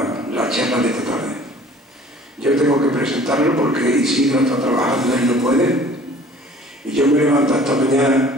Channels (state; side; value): normal; both; correlation 0.50